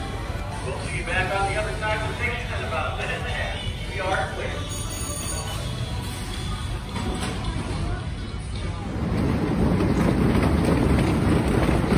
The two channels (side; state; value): both; identical; correlation 1.00